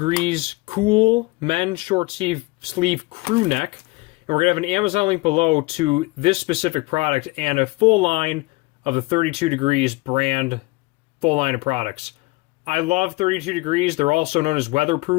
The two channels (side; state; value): right; quieter; 23.4 dB